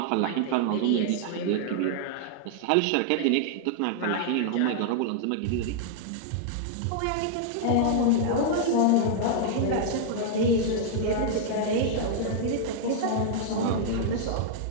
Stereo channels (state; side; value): different; both; correlation -0.01